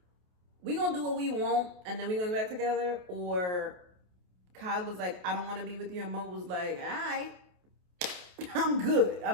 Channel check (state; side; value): late; left; 28 ms